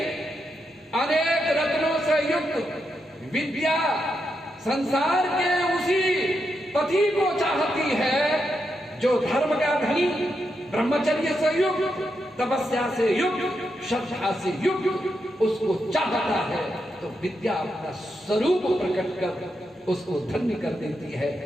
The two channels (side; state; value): both; normal; correlation 0.84